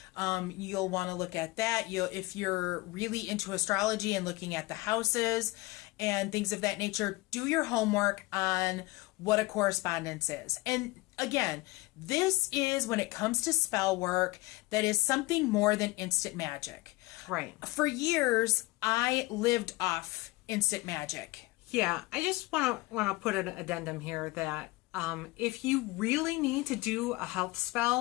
you'll want to look at that. If you're really into astrology and looking at the houses and things of that nature, do your homework on what a correspondence is. And again, this is, when it comes to spell work, that is something more than instant magic. Right. For years, I lived off instant magic. Yeah, I just want to put an addendum here that if you really need to do a health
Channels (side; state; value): right; quieter; 22.0 dB